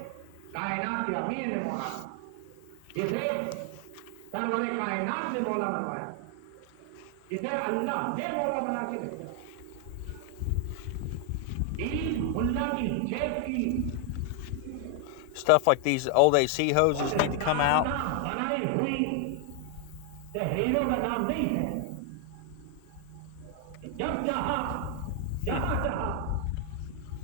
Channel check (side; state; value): both; different; correlation 0.00